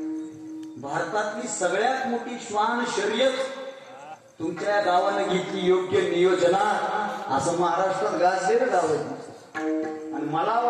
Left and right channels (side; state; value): both; identical; correlation 1.00